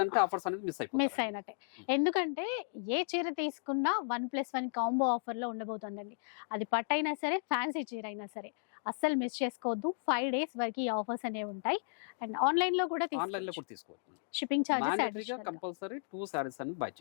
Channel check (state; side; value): silent; right; digital silence